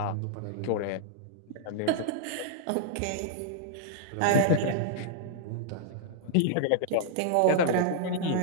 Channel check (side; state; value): both; different; correlation -0.01